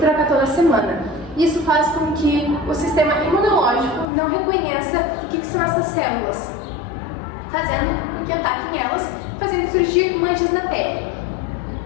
toda semana. Isso faz com que o sistema imunológico não reconheça o que são essas células, fazendo com que ataquem elas, fazendo surgir manchas na pele.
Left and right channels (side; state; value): right; drops out; at 4.0 s